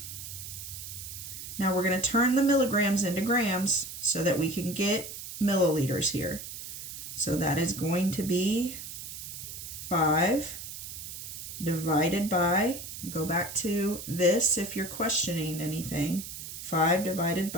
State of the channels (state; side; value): noise; right; hiss, 10 dB below the sound